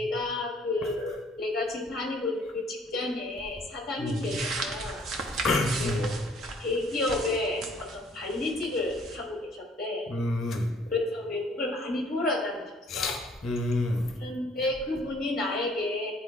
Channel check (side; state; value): both; normal; correlation 0.59